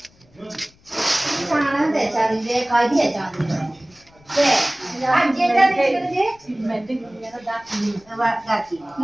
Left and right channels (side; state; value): left; noise; rumble, 30 dB below the sound